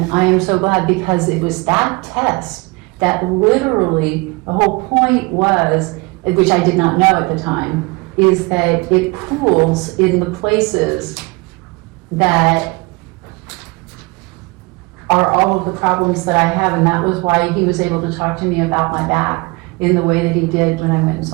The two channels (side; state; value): left; quieter; 26.1 dB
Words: I am so glad, because it was that test that literally, the whole point was, which I did not know at the time, is that it pools in the places that are all of the problems that I have, and that was why he was able to talk to me about my back in the way that he did when I went and